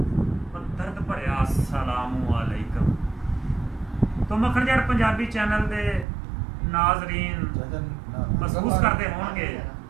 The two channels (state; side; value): drops out; left; at 6.1 s